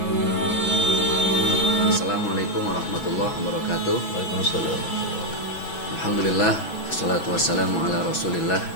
Assalamualaikum warahmatullahi wabarakatuh. Waalaikumsalam. Alhamdulillah, wassalatu wassalamu ala rasulillah.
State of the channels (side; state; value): right; late; 6.1 ms